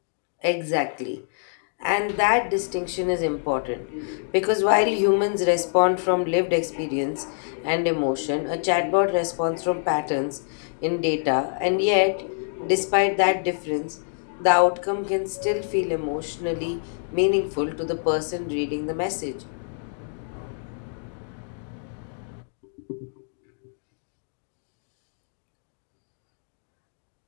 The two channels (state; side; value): silent; right; digital silence